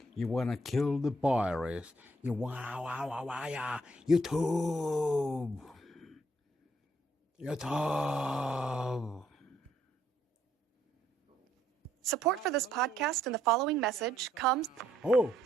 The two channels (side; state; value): both; normal; correlation 0.70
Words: You wanna kill the virus. You YouTube. Support for this podcast and the following message comes. Oh.